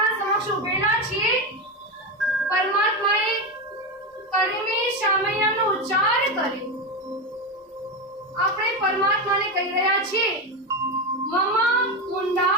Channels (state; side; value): normal; both; correlation 0.15